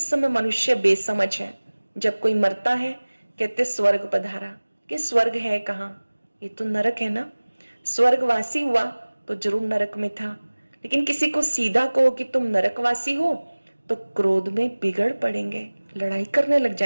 समय मनुष्य बेसमझ है। जब कोई मरता है कहते स्वर्ग पधारा, कि स्वर्ग है कहाँ? ये तो नरक है ना। स्वर्गवासी हुआ तो जरूर नरक में था, लेकिन किसी को सीधा कहो कि तुम नरकवासी हो तो क्रोध में बिगड़ पड़ेंगे, लड़ाई करने लग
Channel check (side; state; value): both; inverted; correlation -1.00